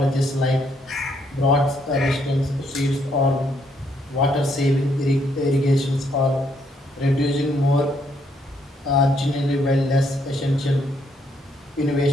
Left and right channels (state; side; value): normal; both; correlation 0.72